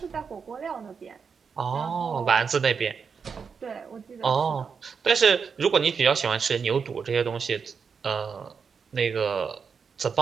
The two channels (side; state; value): left; quieter; 6.0 dB